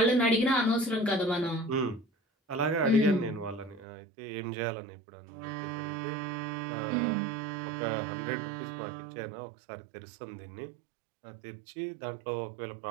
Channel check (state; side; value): drops out; left; at 3.9 s